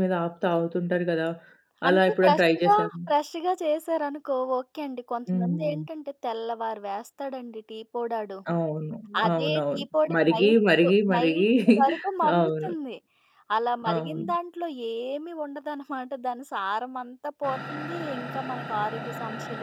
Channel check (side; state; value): both; identical; correlation 1.00